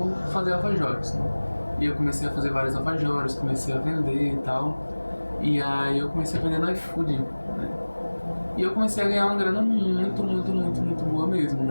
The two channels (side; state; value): both; inverted; correlation -1.00